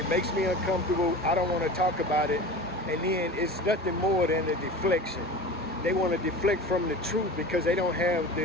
makes me uncomfortable, I don't want to talk about it, and then it's nothing more than a deflection. They want to deflect from the truth because they don't have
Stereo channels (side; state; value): both; normal; correlation 0.34